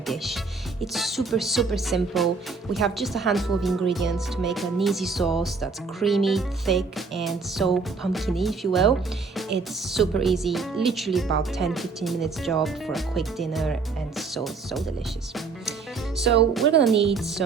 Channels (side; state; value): left; quieter; 4.5 dB